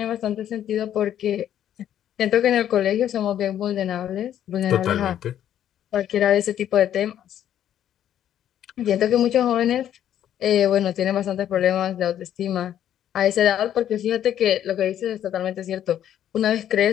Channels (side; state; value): right; quieter; 10.7 dB